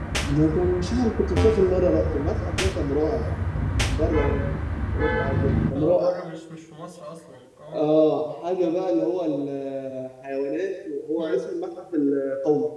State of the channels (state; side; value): identical; both; correlation 1.00